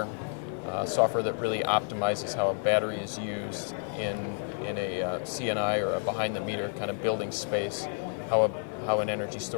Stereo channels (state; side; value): silent; right; 58 dB below the other